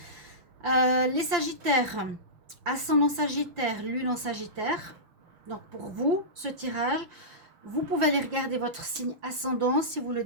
Les Sagittaires, ascendant Sagittaire, lune en Sagittaire. Donc pour vous, ce tirage, vous pouvez aller regarder votre signe ascendant si vous le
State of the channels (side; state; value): left; late; 5.8 ms